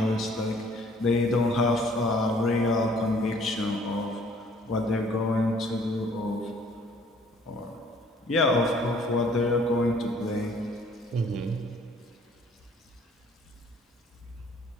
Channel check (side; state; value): both; normal; correlation 0.58